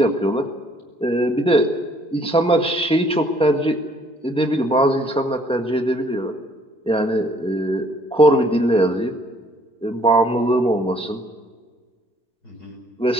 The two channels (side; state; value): both; normal; correlation 0.62